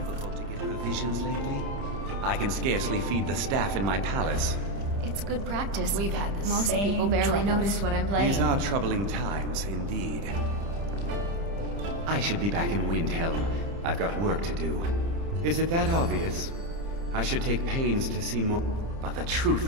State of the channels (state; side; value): late; left; 30 ms